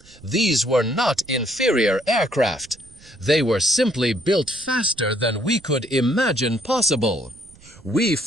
These were not inferior aircraft. They were simply built faster than we could imagine possible. We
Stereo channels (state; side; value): noise; right; rumble, 24 dB below the sound